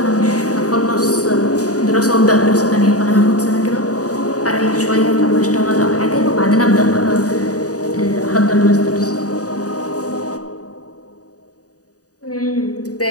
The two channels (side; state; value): right; late; 0.67 ms